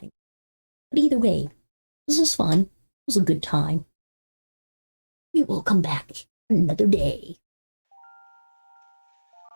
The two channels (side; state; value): both; inverted; correlation -1.00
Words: But either way, this was fun. It was a good time. We will come back another day.